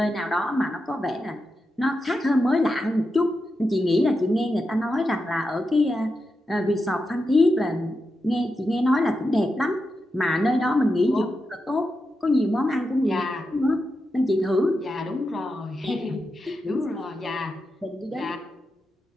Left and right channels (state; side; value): normal; both; correlation 0.88